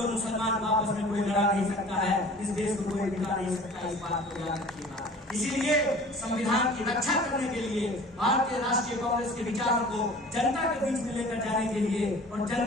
और मुसलमान आपस में कोई लड़ा नहीं सकता है। इस देश को कोई बिगा नहीं सकता। इस बात को याद रखिएगा। इसीलिए संविधान की रक्षा करने के लिए भारतीय राष्ट्रीय कांग्रेस के विचारों को जनता के बीच में लेकर जाने के लिए और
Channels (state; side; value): normal; both; correlation 0.45